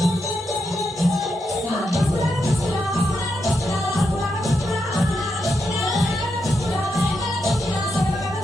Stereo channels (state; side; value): normal; both; correlation 0.84